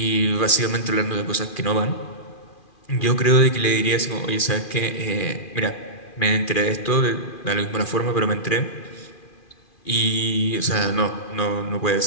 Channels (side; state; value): right; late; 2.4 ms